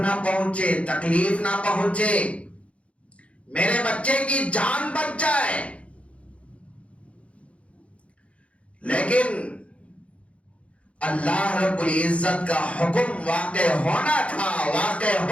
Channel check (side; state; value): right; late; 0.062 ms